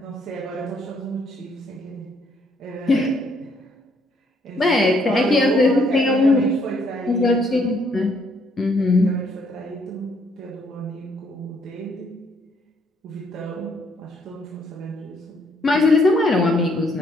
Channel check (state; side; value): normal; both; correlation 0.69